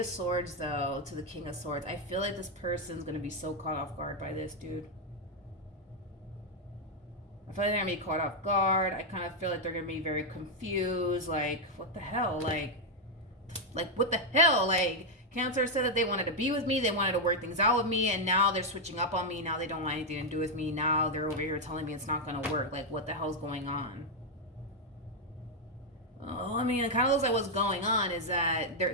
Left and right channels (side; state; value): both; normal; correlation 0.01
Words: Swords, though, to the King of Swords. I feel like this person's going to be so caught off guard by this, dude. I feel like they're going to be caught off guard. I kind of feel like they're going to be very confused. Like, what the hell? Like, what the hell? Like, Cancer said that they wanted to be with me. They wanted to work things out with me. And now they're switching up on me. Now they don't want anything to do with me. Now they're over here telling me it's not going to work. Like, what the hell's going on? Oh, I mean, it kind of looks like what's going on is that